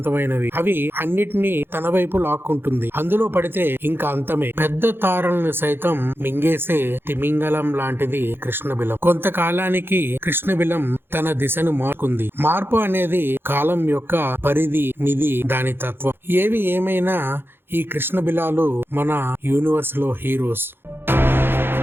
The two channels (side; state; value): left; late; 0.10 ms